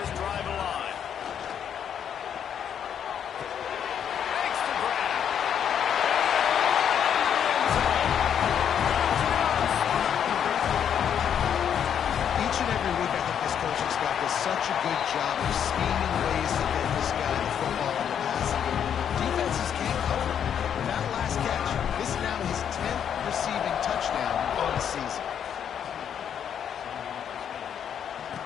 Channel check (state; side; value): quieter; right; 8.6 dB